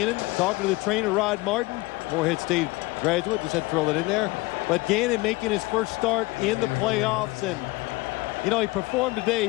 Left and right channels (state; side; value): quieter; right; 22.4 dB